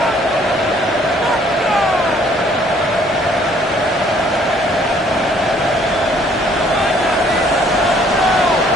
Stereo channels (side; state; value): both; normal; correlation 0.61